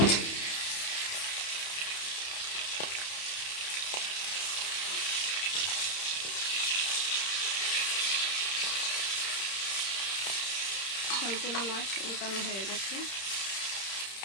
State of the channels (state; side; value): late; right; 30 ms